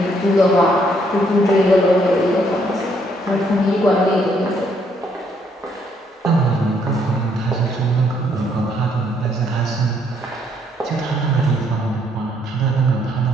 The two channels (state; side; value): normal; both; correlation 0.70